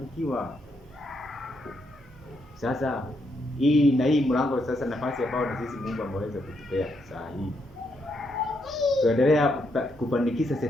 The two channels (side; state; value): both; normal; correlation 0.78